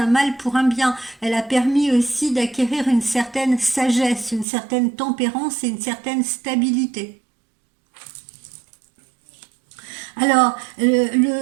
mal pour un bien, elle a permis aussi d'acquérir une certaine sagesse, une certaine tempérance et une certaine stabilité. Alors,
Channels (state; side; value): drops out; left; at 4.5 s